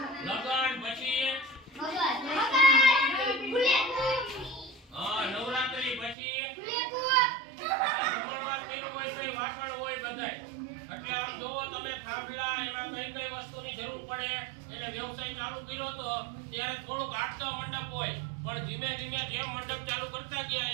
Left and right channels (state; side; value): drops out; left; at 6.2 s